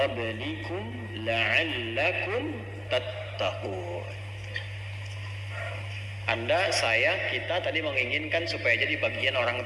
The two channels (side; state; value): both; identical; correlation 1.00